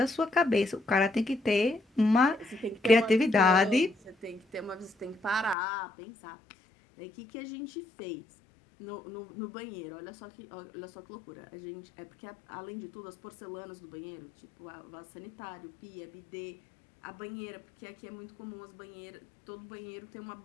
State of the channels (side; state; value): right; drops out; at 5.6 s